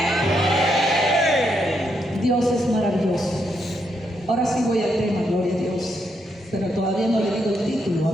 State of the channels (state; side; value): normal; both; correlation 0.79